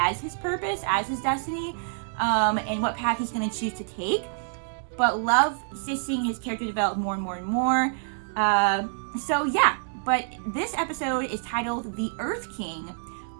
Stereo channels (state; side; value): silent; left; digital silence